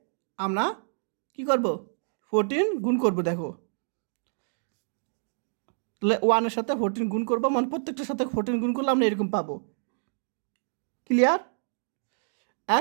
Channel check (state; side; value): silent; left; digital silence